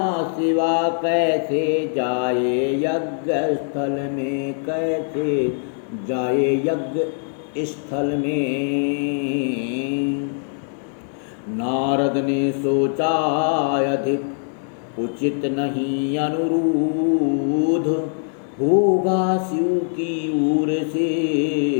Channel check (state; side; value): silent; right; digital silence